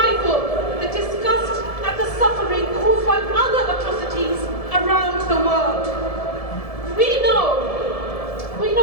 the disgust at the suffering caused by other atrocities around the world? We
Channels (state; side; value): late; right; 1.7 ms